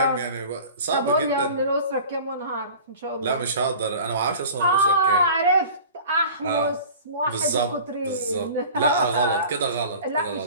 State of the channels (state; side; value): inverted; both; correlation -0.41